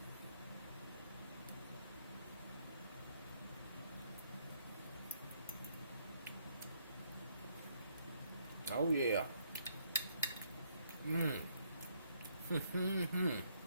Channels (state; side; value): inverted; both; correlation -0.70